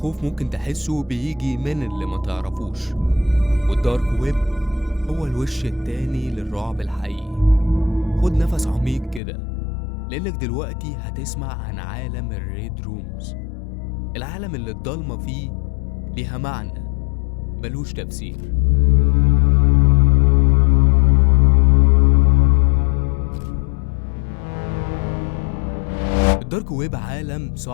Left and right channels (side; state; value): right; drops out; at 9.2 s